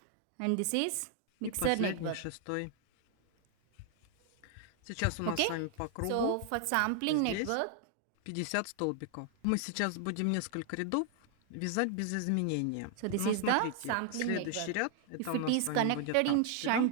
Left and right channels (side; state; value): both; different; correlation 0.00